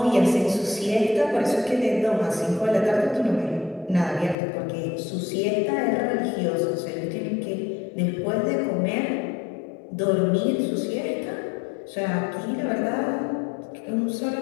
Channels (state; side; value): drops out; right; at 4.4 s